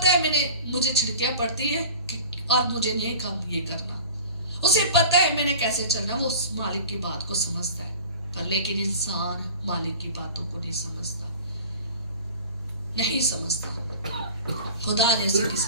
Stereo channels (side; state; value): both; inverted; correlation -0.39